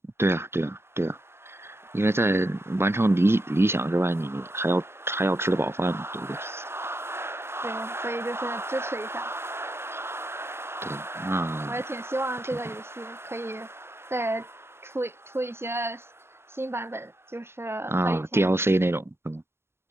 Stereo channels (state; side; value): late; left; 0.12 ms